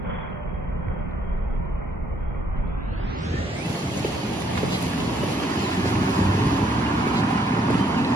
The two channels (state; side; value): normal; both; correlation 0.68